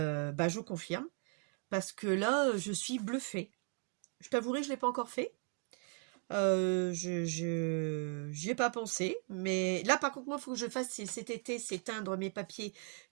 je confirme. Parce que là, je suis bluffée. Je t'avouerai, je ne l'ai pas encore fait. J'y ai pas pensé, mais là par contre moi il faut que je fasse cet été, c'est teindre mes papiers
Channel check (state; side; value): quieter; left; 39.5 dB